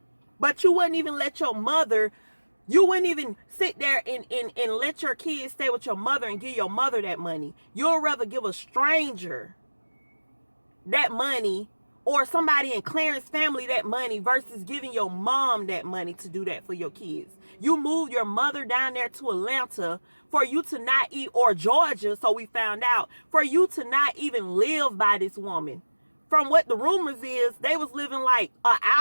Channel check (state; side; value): inverted; both; correlation -1.00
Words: But you wouldn't even let your mother, you wouldn't even sit there and let your kids stay with your mother and give your mother that money. You'll rather give a stranger that money, or somebody in Clarence family that money, versus giving your mom that money to do that for your kids. You moved your mother down there to Atlanta for you to not eat, or Georgia, so we found out, for you to not even live by this woman. From what the rumors is, they was living like an